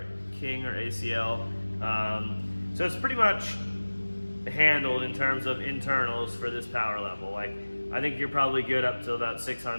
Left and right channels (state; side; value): inverted; both; correlation -1.00